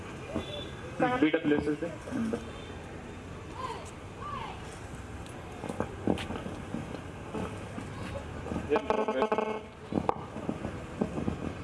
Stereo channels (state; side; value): identical; both; correlation 1.00